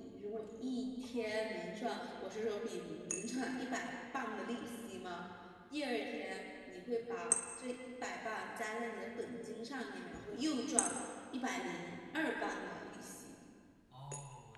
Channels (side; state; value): both; identical; correlation 1.00